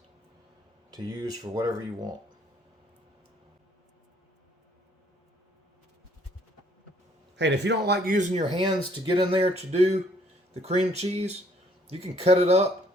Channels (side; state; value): both; normal; correlation 0.63